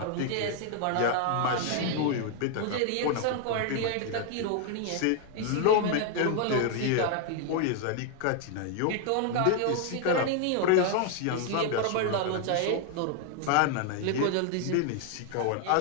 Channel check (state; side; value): different; both; correlation 0.00